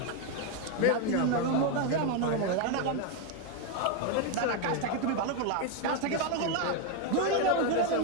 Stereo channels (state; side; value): different; both; correlation 0.01